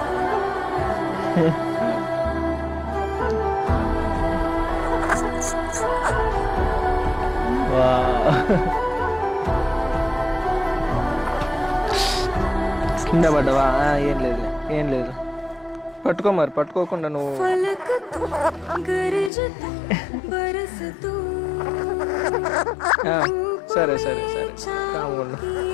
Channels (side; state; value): right; drops out; at 19.3 s